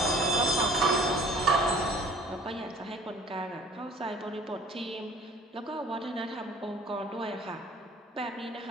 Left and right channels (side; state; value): both; normal; correlation 0.51